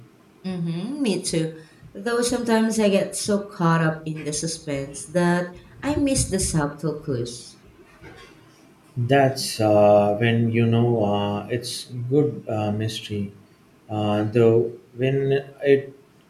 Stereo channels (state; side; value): identical; both; correlation 1.00